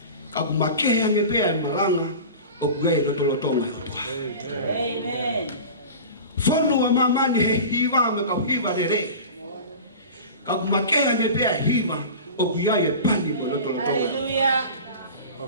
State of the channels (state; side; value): inverted; both; correlation -0.34